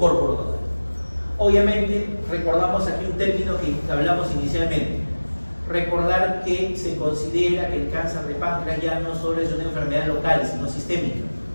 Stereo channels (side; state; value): both; inverted; correlation -1.00